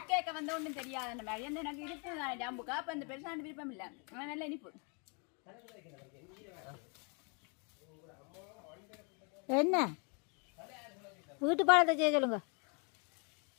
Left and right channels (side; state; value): right; quieter; 36.4 dB